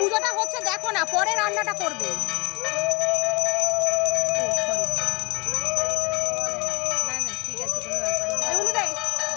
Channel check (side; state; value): right; quieter; 27.0 dB